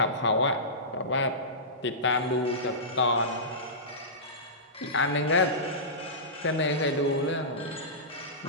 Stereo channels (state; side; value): normal; both; correlation -0.19